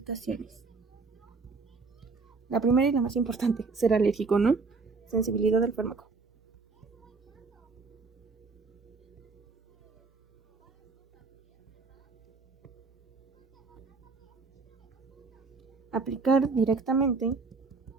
La primera y la más importante, ser alérgico, ¿no? Sensibilidad del fármaco. Aplicar directamente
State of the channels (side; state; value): left; quieter; 4.3 dB